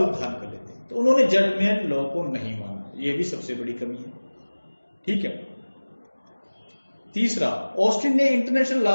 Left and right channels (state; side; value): inverted; both; correlation -1.00